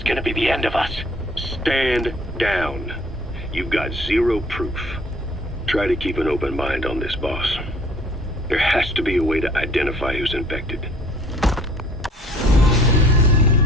gonna be the end of us. Stand down. You've got zero proof. Try to keep an open mind on this, boss. There has to be a way to identify who's infected.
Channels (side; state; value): both; normal; correlation 0.55